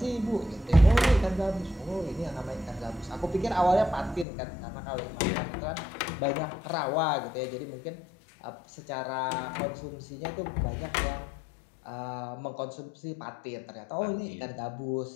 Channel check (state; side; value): drops out; right; at 4.2 s